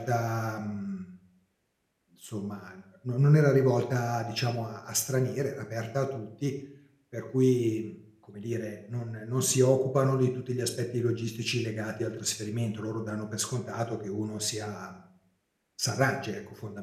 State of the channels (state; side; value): identical; both; correlation 1.00